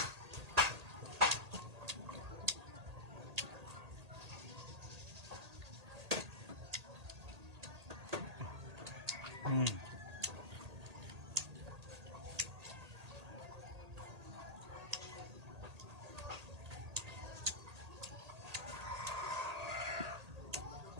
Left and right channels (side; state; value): left; late; 1.8 ms